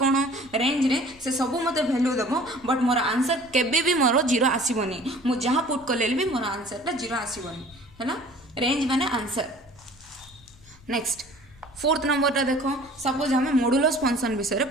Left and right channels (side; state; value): left; noise; rumble, 25 dB below the sound